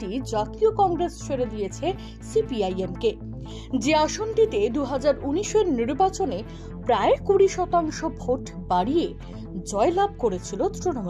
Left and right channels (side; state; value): both; identical; correlation 1.00